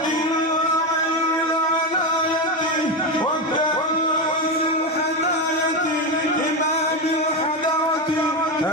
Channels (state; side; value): normal; both; correlation 0.13